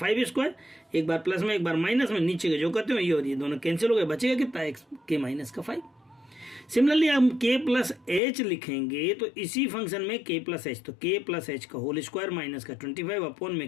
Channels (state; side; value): drops out; right; at 8.2 s